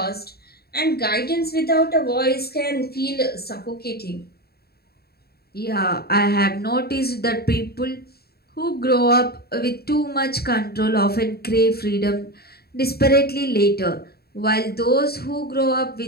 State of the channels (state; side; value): late; right; 0.46 ms